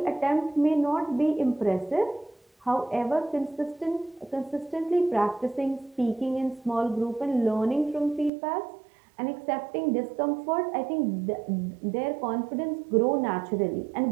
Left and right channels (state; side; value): drops out; left; at 8.3 s